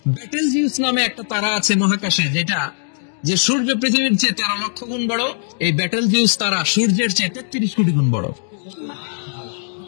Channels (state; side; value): silent; right; digital silence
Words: ব্যাটেলজিউস নামে একটা তারা আছে মহাকাশে, যেটা যে সূর্য পৃথিবীর চেয়ে 13 লক্ষ গুণ বড়। এই ব্যাটেলজিউস তারা সূর্যের চেয়ে 33 কোটি গুণ বড়।